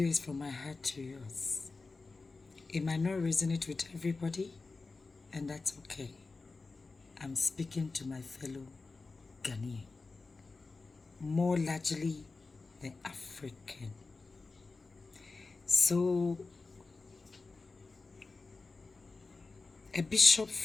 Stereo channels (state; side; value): quieter; right; 3.9 dB